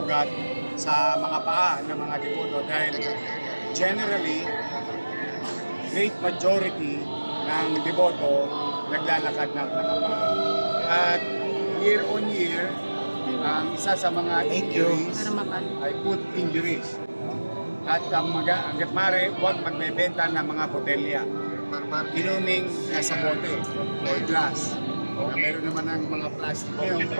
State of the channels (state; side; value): inverted; both; correlation -1.00